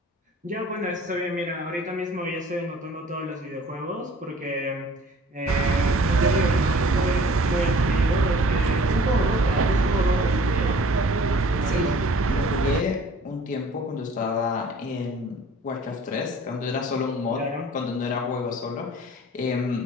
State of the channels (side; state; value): both; normal; correlation 0.50